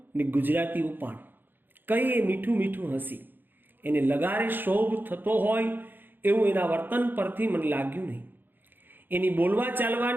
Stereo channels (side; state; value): left; late; 0.093 ms